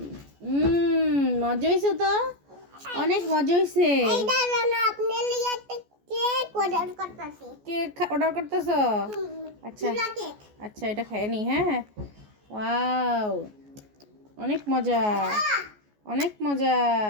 মজা হয়েছে তো, অনেক মজা হয়েছে। এইটা জানো আপনি লিয়ে একটা কেক অর্ডার করতেছি। কেক অর্ডার করতেছো? আচ্ছা আচ্ছা এটা খাইয়ে নি। হ্যাঁ ওয়াও, অনেক মজা, অনেক মজা।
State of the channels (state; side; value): late; left; 14 ms